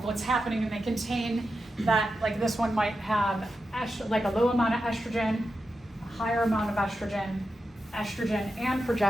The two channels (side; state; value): both; normal; correlation 0.89